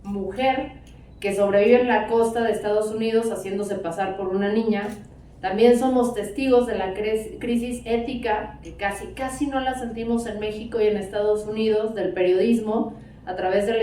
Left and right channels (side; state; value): both; identical; correlation 1.00